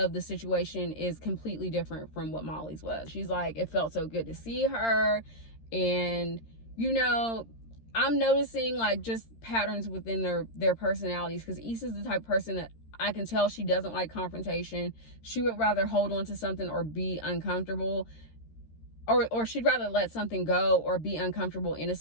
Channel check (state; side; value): late; right; 13 ms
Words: the situation is completely different from what Molly's was. She's like, it felt so good to see her. And, you know, I'm noticing like just patterns within their personalities, because Issa's the type of person that I can tell she doesn't like confrontation. She would rather hold on to something or be uncomfortable, or she'd rather let something go or be uncomfortable in a